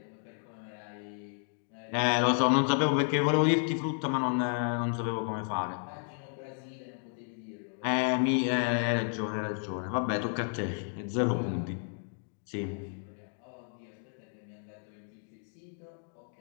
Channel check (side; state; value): right; silent; 56 dB below the other